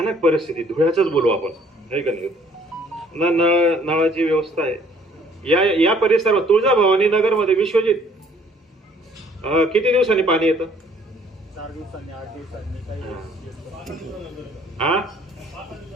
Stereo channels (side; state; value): both; normal; correlation 0.59